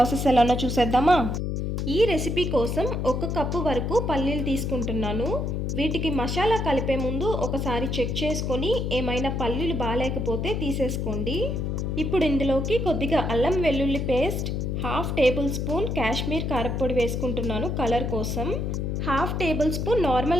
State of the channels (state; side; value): noise; left; hum, 1 dB below the sound